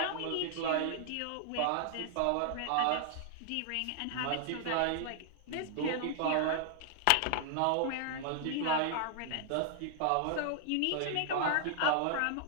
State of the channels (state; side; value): different; both; correlation 0.00